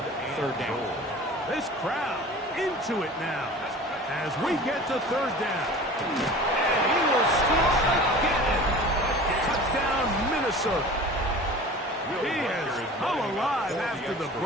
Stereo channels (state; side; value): normal; both; correlation 0.40